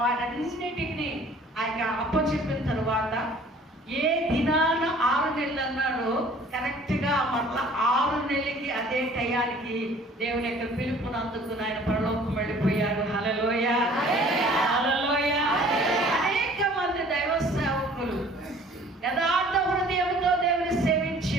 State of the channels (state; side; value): normal; both; correlation 0.52